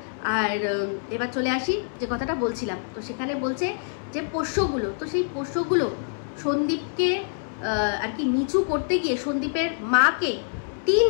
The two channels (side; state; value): right; silent; 61 dB below the other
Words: আর এবার চলে আসি যে কথাটা বলছিলাম, তো সেখানে বলছে যে পোষ্যগুলো, তো সেই পোষ্যগুলো সন্দীপকে আর কি নিচু করতে গিয়ে সন্দীপের মাকে টিন